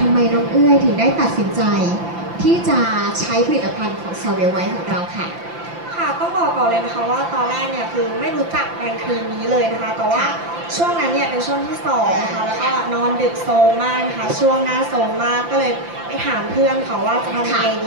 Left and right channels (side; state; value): left; late; 5.8 ms